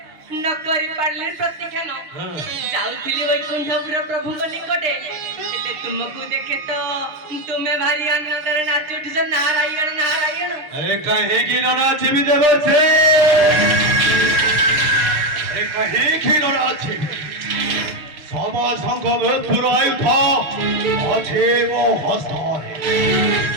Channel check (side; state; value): left; late; 6.7 ms